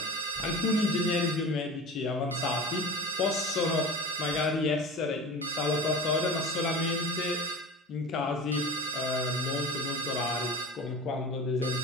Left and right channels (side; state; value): both; normal; correlation 0.33